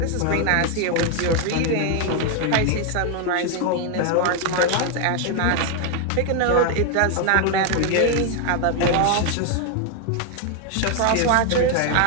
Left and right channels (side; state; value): both; different; correlation 0.01